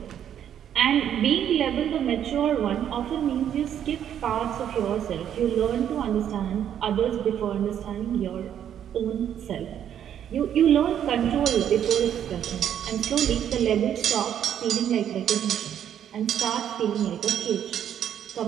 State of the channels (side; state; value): left; quieter; 9.7 dB